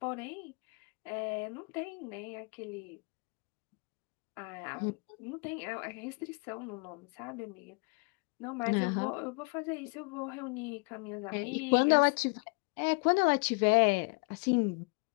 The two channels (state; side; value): quieter; right; 33.2 dB